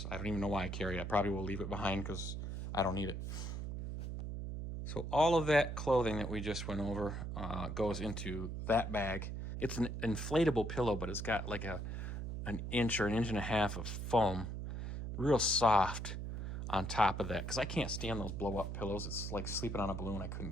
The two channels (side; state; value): right; noise; hum, 5 dB below the sound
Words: I don't even know why I carry it. I probably will leave it behind because I don't need it. So all of that clothing that we just went over goes into that bag. It's an inflatable pillow, but it's got like an inch or an inch and a half of foam, real soft on top of that. Because I can't stand those blow-up pillows. It's like sleeping on a balloon.